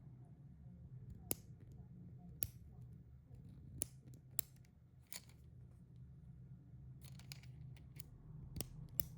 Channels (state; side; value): identical; both; correlation 1.00